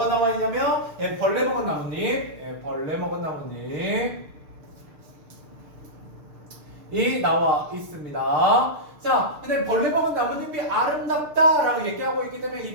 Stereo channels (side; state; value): left; late; 6.7 ms